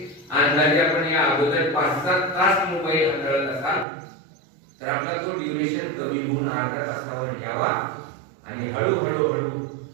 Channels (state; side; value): drops out; left; at 3.9 s